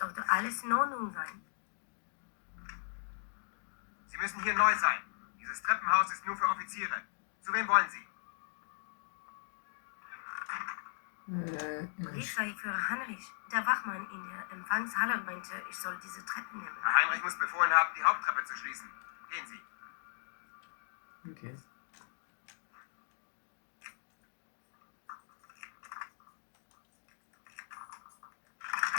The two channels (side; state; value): right; silent; digital silence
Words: alles in Ordnung sein. Sie müssen hier neu sein. Dieses Treppenhaus ist nur für Offiziere. Zu wem wollen Sie? Polizeiführer Heinrich, der Wachmann in der Empfangshalle meinte, ich soll diese Treppen nehmen. Herr Heinrich muss befohlen haben, die Haupttreppe zu schließen. Gehen Sie. Ok.